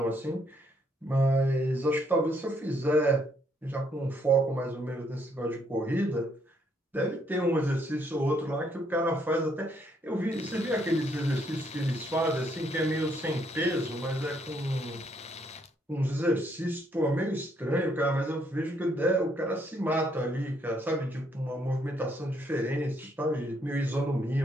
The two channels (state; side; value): normal; both; correlation 0.71